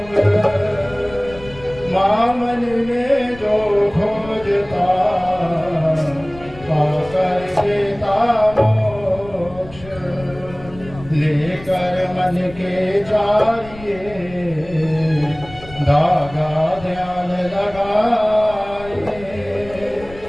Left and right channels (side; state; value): left; noise; rumble, 18 dB below the sound